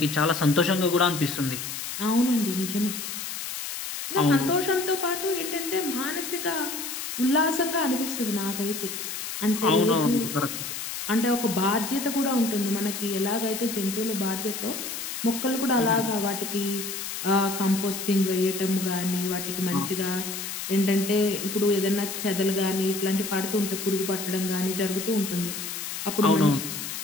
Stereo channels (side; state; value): left; noise; hiss, 6 dB below the sound